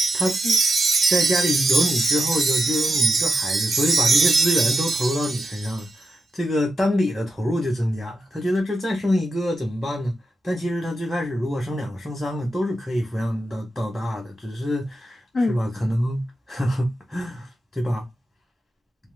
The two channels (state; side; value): normal; both; correlation 0.88